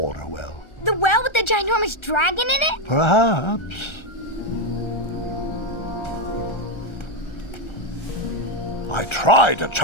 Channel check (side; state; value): right; late; 1.3 ms